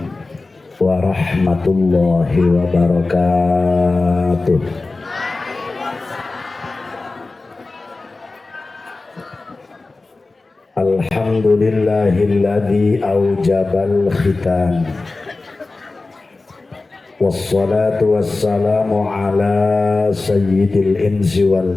warahmatullahi wabarakatuh. Alhamdulillahilladzi aujabal khitam. Wassalatu wassalamu ala sayyidil insi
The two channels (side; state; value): right; quieter; 3.5 dB